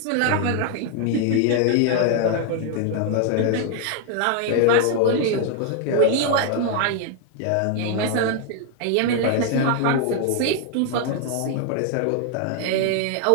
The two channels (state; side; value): different; both; correlation 0.00